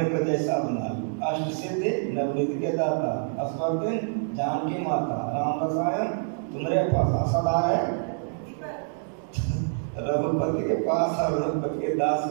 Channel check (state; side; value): silent; left; digital silence